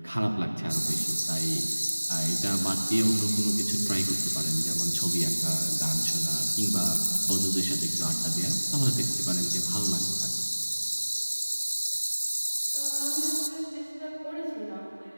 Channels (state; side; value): inverted; both; correlation -1.00